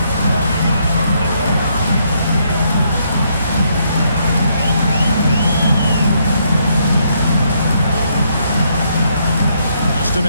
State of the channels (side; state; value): both; inverted; correlation -0.73